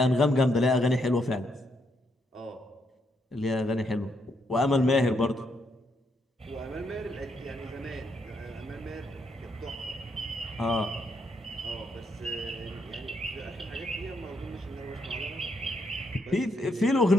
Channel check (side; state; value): both; normal; correlation 0.76